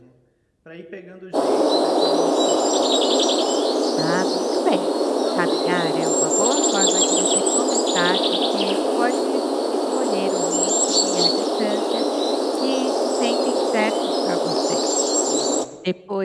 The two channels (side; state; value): both; identical; correlation 1.00